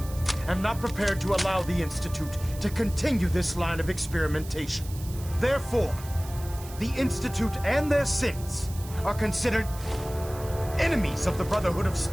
am not prepared to allow the Institute to continue this line of experimentation. Therefore, the Institute and their synths are considered enemies of the Brotherhood of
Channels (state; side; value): noise; right; hiss, 16 dB below the sound